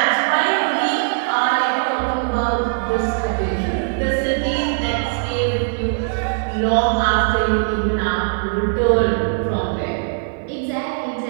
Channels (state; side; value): silent; left; 55 dB below the other